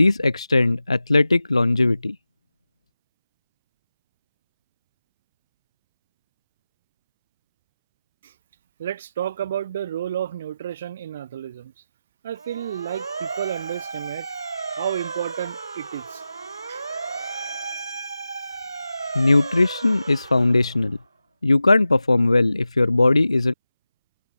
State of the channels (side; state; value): both; inverted; correlation -0.93